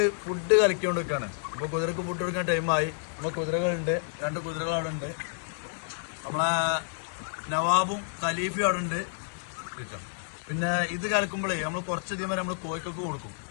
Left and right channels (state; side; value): silent; right; digital silence